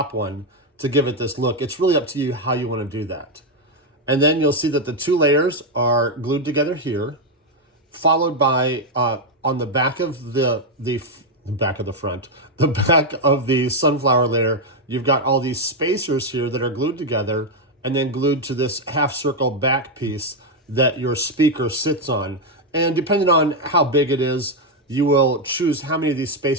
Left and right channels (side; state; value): both; normal; correlation 0.03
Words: one to give it this look. It's really up to you how you want to do that. And then you'll see that the 2 layers are glued together here, followed by on the back of the back of the sunflower layer, you've got all these spacers here that are glued together and then glued to this half circle back piece that your speaker sits on. And depending on how big it is, you will choose how many of these